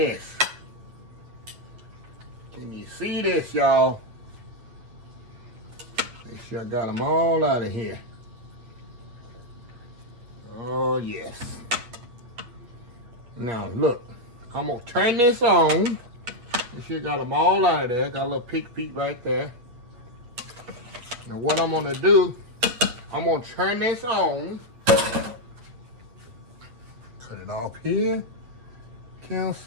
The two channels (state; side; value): late; left; 8.6 ms